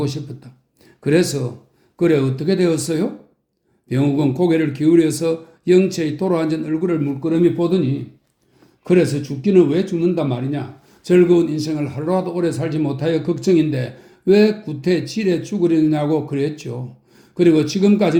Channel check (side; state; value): both; identical; correlation 1.00